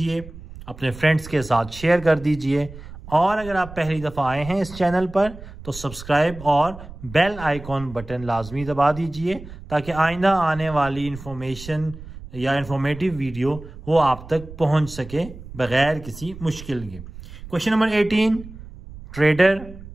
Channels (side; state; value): right; noise; rumble, 15 dB below the sound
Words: अपने फ्रेंड्स के साथ शेयर कर दीजिए और अगर आप पहली दफ़ा आए हैं इस चैनल पर तो सब्सक्राइब और बेल आइकॉन बटन लाजमी दबा दीजिए ताकि आइंदा आने वाली इंफॉर्मेशन या इंफॉर्मेटिव वीडियो वो आप तक पहुंच सके बगैर किसी मुश्किल के। Question number 18, trader